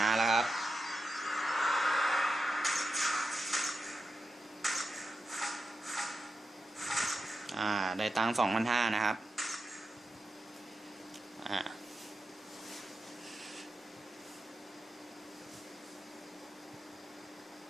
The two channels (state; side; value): normal; both; correlation 0.89